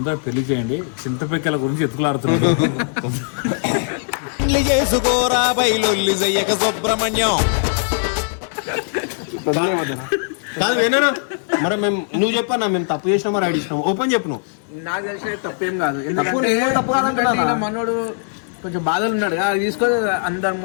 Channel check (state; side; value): silent; right; digital silence